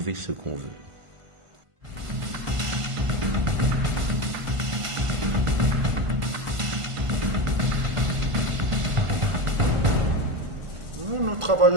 ce qu'on veut. Nous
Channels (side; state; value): left; late; 1.5 ms